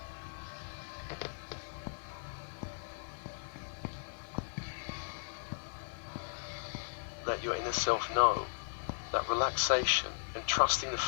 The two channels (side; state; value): right; silent; 53 dB below the other